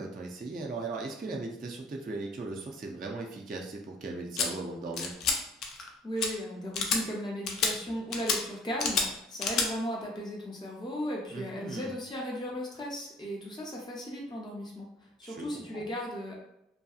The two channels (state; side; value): normal; both; correlation 0.53